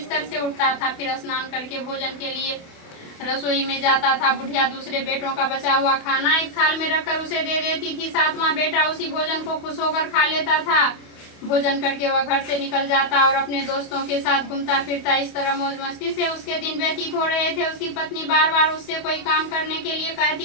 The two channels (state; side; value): late; right; 28 ms